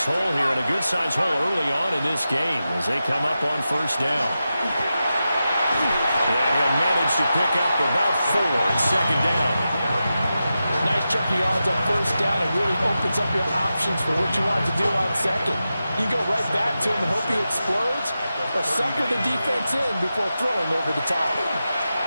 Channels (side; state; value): both; inverted; correlation -0.91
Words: hole here, and a good-sized hole early on in this game as they come up on first down. And he'll manage to pick up about 4 in second down. Nice chunk of yards on first down. It really opens up your options for what you want to do on second. You go right back to him and hope he explodes, or sucker the defense in before throwing over the top.